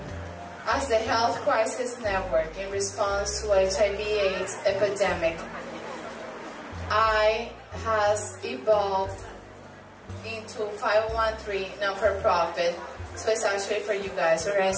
as the Health Crisis Network in response to HIV/AIDS epidemic, I has evolved into 501(c)(3) non-for-profit, so it's actually for you guys,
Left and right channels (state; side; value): identical; both; correlation 1.00